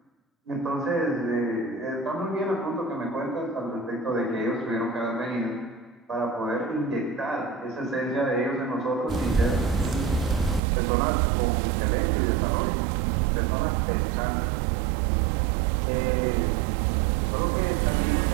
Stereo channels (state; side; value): drops out; left; at 10.6 s